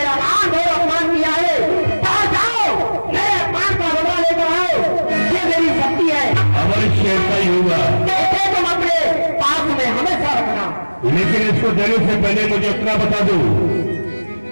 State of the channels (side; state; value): both; inverted; correlation -1.00